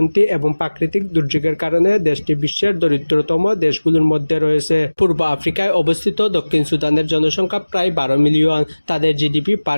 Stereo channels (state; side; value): inverted; both; correlation -1.00